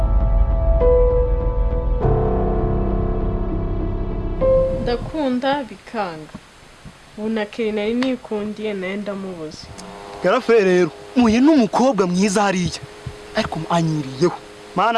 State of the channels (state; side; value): identical; both; correlation 1.00